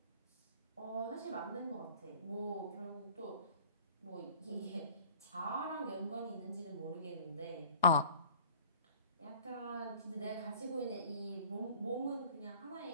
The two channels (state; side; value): inverted; both; correlation -0.49